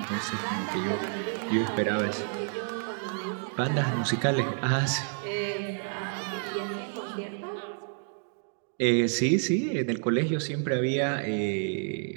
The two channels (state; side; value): silent; left; 58 dB below the other